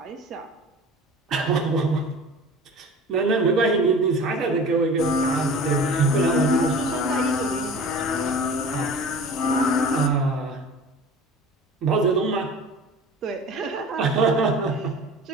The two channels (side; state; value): both; normal; correlation 0.40